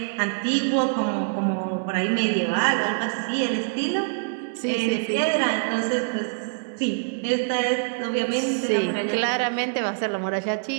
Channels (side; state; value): left; silent; digital silence